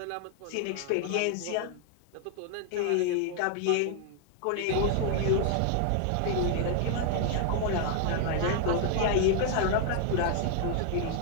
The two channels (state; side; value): different; both; correlation 0.00